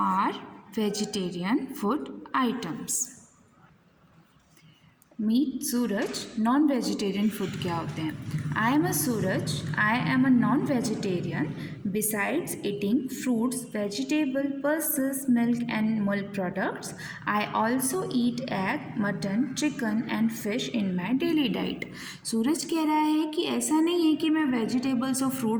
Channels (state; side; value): identical; both; correlation 1.00